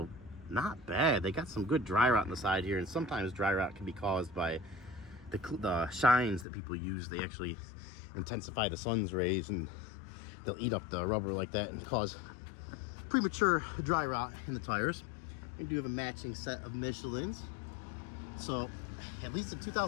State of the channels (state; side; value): drops out; right; at 6.5 s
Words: not bad. They got some good dry rot on the side here. And sometimes dry rot can be caused by the shines that people use. They actually intensify the sun's rays and they'll eat up the rubber like that and cause premature dry rot in the tires. And do have a matching set of Michelins. So at least in